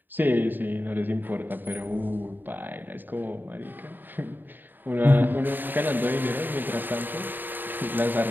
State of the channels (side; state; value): left; late; 0.092 ms